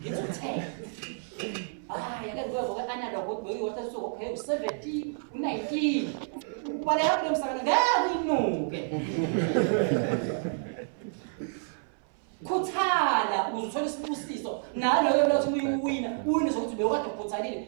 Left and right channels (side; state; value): left; silent; 58 dB below the other